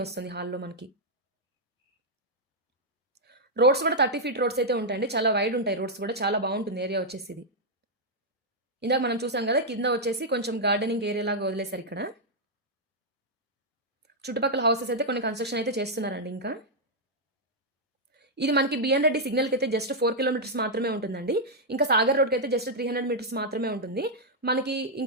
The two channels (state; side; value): normal; both; correlation -0.04